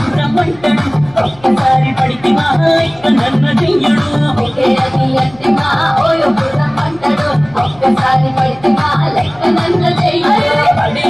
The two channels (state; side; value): noise; left; hum, 25 dB below the sound